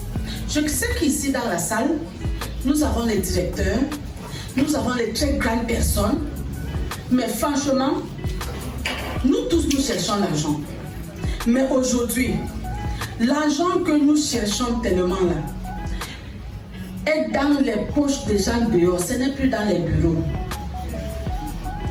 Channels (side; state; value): both; identical; correlation 1.00